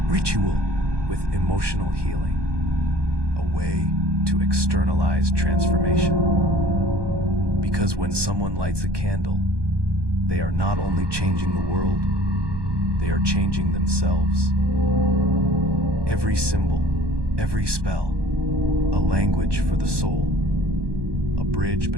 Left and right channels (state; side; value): late; left; 1.2 ms